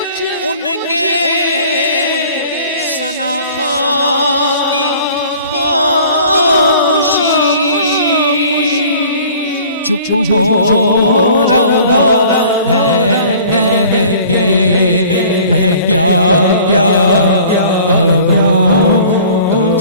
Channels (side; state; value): both; inverted; correlation -0.49